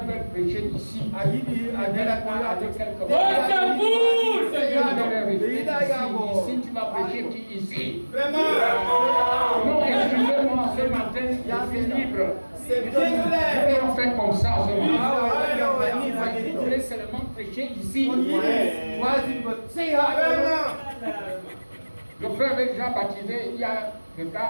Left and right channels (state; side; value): inverted; both; correlation -1.00